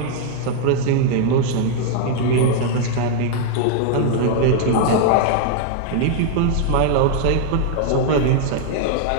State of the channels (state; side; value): different; both; correlation -0.01